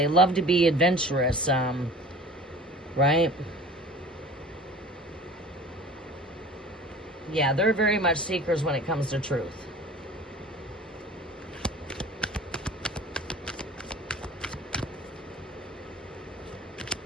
love to be adventurous. Right? Yeah, they're very much seekers when it comes to truth.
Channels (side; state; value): both; normal; correlation 0.42